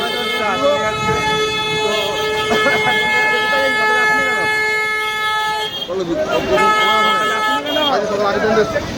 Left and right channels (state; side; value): identical; both; correlation 1.00